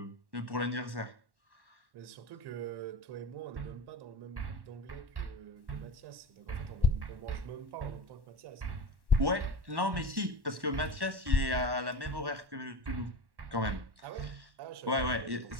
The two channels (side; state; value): left; late; 1.1 ms